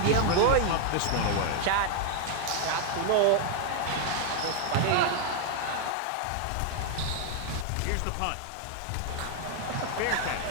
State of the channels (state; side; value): different; both; correlation 0.00